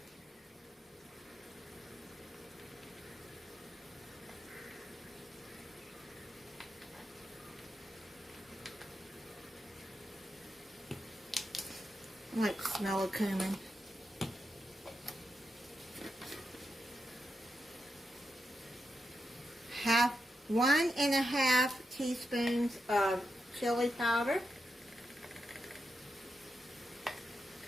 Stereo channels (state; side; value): normal; both; correlation 0.86